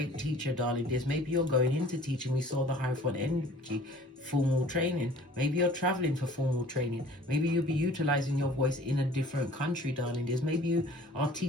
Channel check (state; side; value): normal; both; correlation 0.50